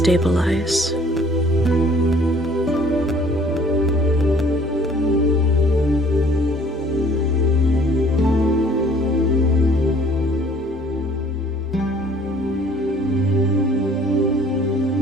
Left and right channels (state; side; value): normal; both; correlation 0.55